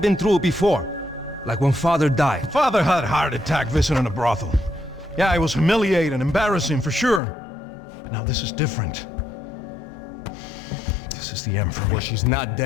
been through it before. Like when Father died. Father had a heart attack visiting a brothel. Yeah, it was humiliating, embarrassing, for sure. But now this is different. This is the end for me. Well, she's not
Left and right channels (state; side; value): drops out; right; at 7.2 s